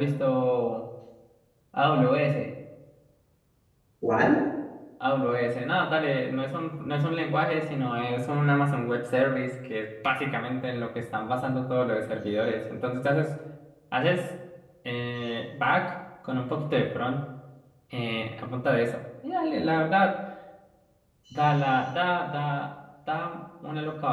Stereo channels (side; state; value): both; identical; correlation 1.00